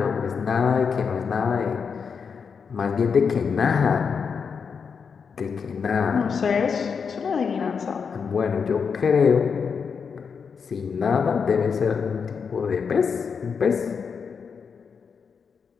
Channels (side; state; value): right; quieter; 6.0 dB